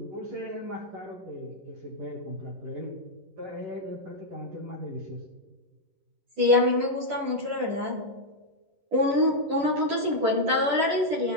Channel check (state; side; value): late; left; 10 ms